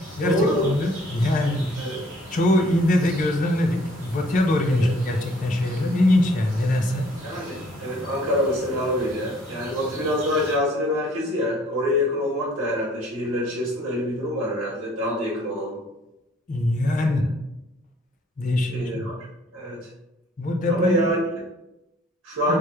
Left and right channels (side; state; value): both; normal; correlation 0.59